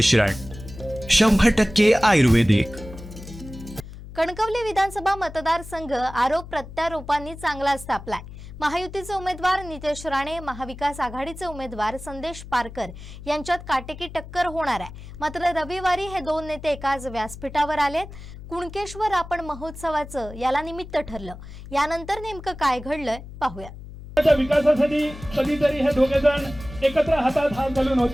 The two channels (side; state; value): left; noise; hum, 14 dB below the sound